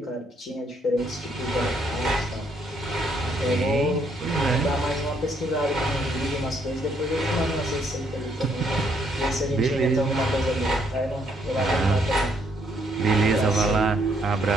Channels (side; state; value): both; normal; correlation 0.71